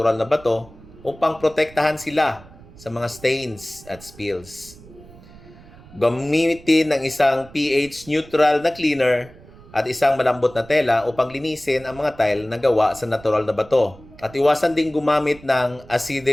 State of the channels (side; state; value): right; noise; rumble, 21 dB below the sound